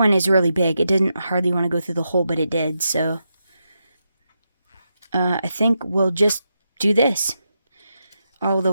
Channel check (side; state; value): both; inverted; correlation -0.85